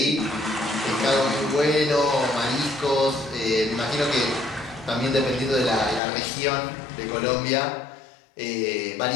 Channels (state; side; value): drops out; right; at 6.0 s